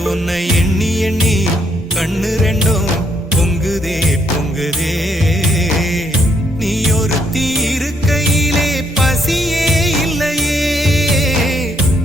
உன்னை எண்ணி எண்ணி கண்ணு ரெண்டும் பொங்குதே பொங்குதே நீ ஒரு தீருக்கையிலே பசியே இல்லையே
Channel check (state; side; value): normal; both; correlation 0.73